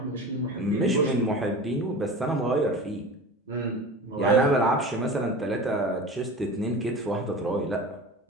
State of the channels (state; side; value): normal; both; correlation 0.34